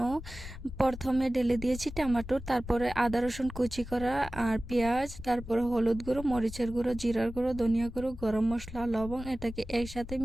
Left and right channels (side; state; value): left; noise; rumble, 12 dB below the sound